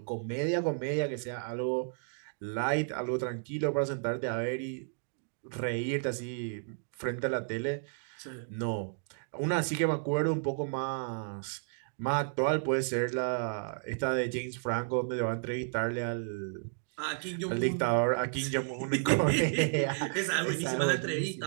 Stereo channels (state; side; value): silent; left; digital silence